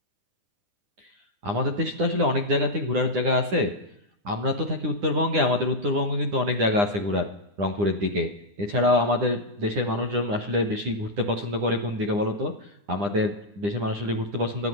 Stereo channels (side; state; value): left; late; 9.9 ms